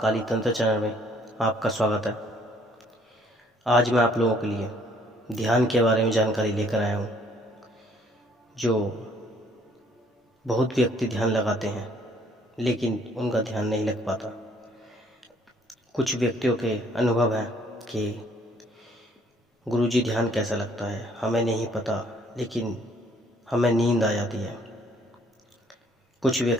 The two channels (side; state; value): both; normal; correlation 0.62